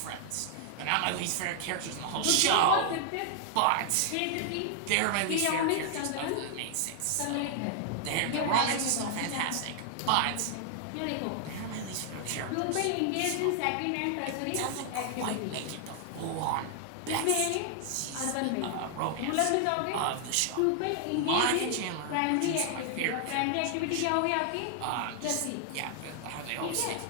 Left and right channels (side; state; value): both; different; correlation 0.00